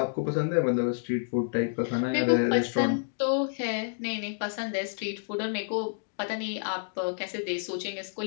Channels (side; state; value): right; silent; digital silence